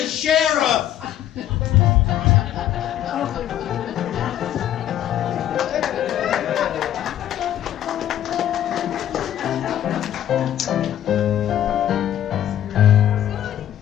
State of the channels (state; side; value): quieter; right; 11.4 dB